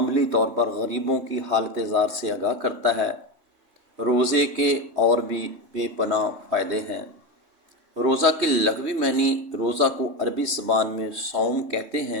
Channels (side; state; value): left; late; 3.2 ms